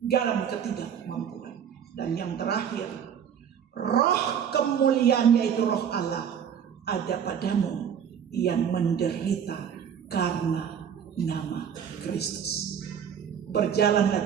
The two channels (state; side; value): quieter; left; 8.2 dB